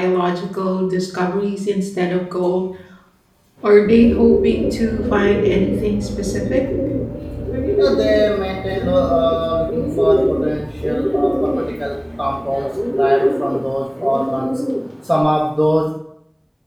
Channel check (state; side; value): identical; both; correlation 1.00